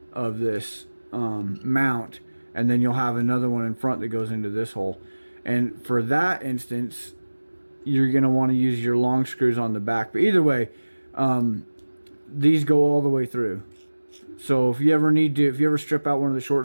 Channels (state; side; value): inverted; both; correlation -1.00